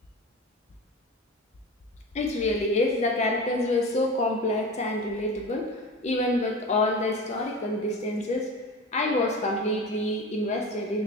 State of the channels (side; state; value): both; normal; correlation 0.31